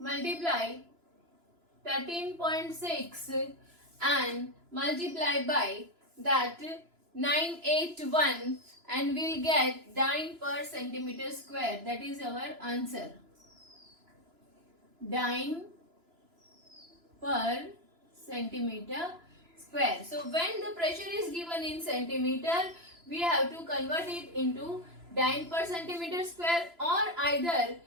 13.6 and multiply by that 981 and we'll get dyne per centimeter square. That is our answer. Dyne per centimeter square. So when the pressure is given in centimeter, we have to convert it into dyne per centimeter square, or either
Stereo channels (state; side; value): late; left; 3.0 ms